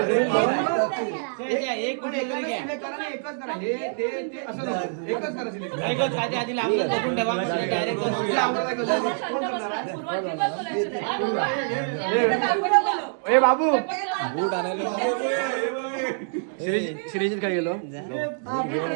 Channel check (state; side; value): silent; left; digital silence